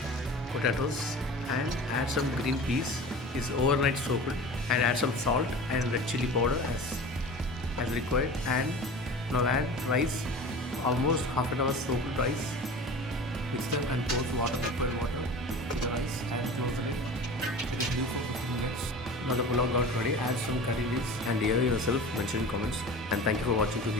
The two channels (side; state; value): both; normal; correlation 0.36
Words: potatoes and add some green peas is overnight soaked, and add some salt and red chili powder as required, and now add rice, almost half an hour soaked rice. Mix them and pour water, liquid water to the rice and close the lid. It is due for 15 minutes. Now the pulao got ready. Add some curry leaves and hear yourself mention in comments, and thank you for watching to